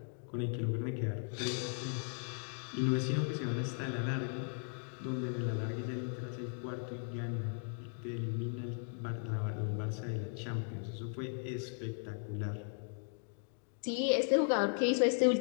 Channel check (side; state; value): right; silent; 53 dB below the other